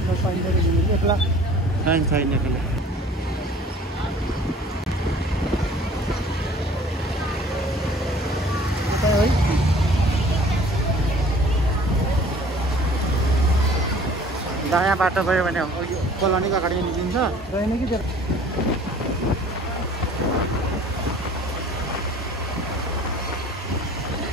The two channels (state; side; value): normal; both; correlation 0.50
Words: दायाँ बाटो गयो भने कोलोनीको अगाडि निस्किन्छ रहेन कि